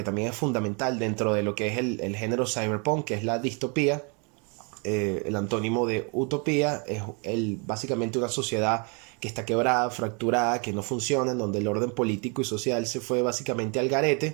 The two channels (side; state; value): left; quieter; 34.5 dB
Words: también es fundamental dentro de lo que es el género cyberpunk, que es la distopía. El antónimo de utopía es básicamente una sociedad que está quebrada, fracturada, que no funciona, en donde el orden político y social se fue básicamente al